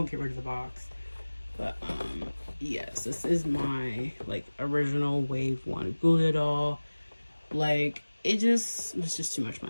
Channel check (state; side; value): inverted; both; correlation -1.00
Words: get rid of the box. But yes, this is my like original Wave 1 Julia doll. Like, it was just too much